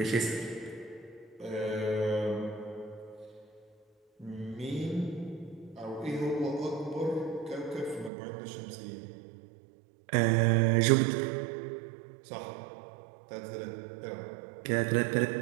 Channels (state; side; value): drops out; left; at 8.1 s